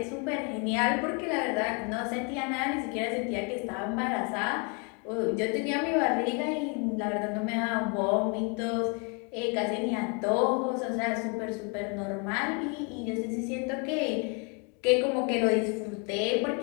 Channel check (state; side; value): quieter; right; 34.8 dB